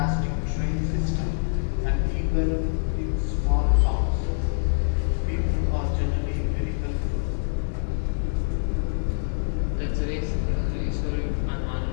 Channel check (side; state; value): right; silent; 62 dB below the other